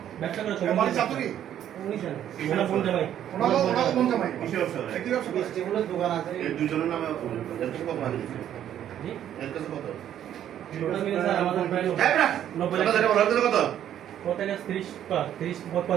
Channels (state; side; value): quieter; left; 10.7 dB